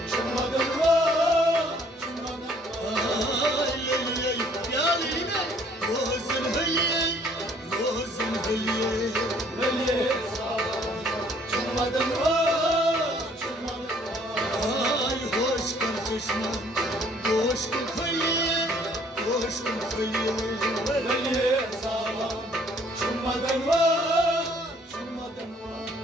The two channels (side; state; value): both; normal; correlation 0.60